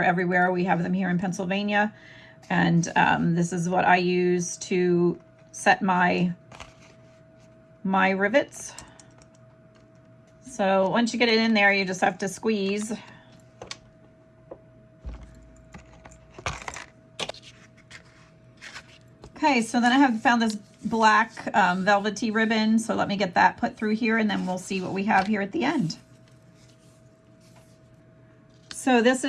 everywhere. We have them here in Pennsylvania. And this is what I use to set my rivets. So once you get it in there, you just have to squeeze. Okay, so then I have found this black velvety ribbon, so let me get that put through here and then we'll see what we have here at the end. So this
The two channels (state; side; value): identical; both; correlation 1.00